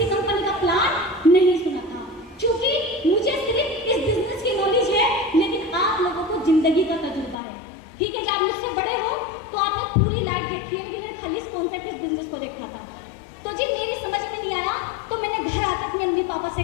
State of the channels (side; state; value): right; drops out; at 7.4 s